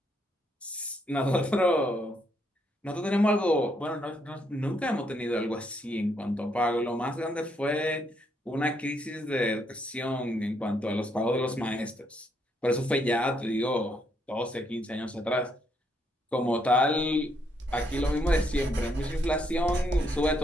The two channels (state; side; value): normal; both; correlation 0.74